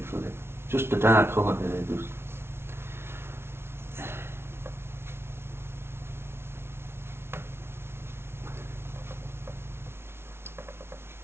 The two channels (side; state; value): left; late; 0.12 ms